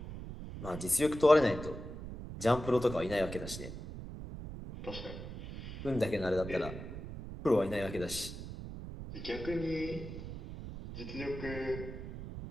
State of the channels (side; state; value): right; noise; rumble, 9 dB below the sound